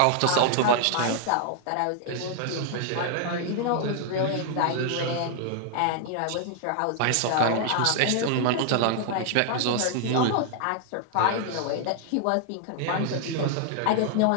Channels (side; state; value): both; different; correlation 0.00